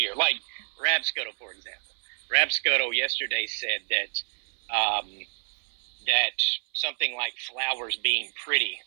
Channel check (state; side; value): silent; left; 58 dB below the other